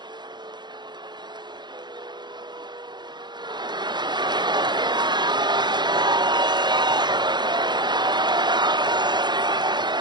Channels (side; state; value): left; late; 0.21 ms